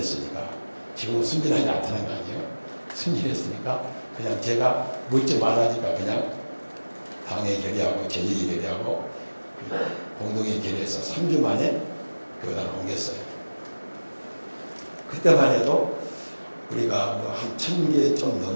지금은 순진하지 않다는 거 아니에요. 순진했으니까 그냥 제가 묻지 말라니까 그냥 당회 결의하고 재직회 결의하고 공동회 결의해서 3주 만에 교단을 옮겼어요. 그때만 해도 우리가 뭐 한 1000개 좀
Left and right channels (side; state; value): both; inverted; correlation -1.00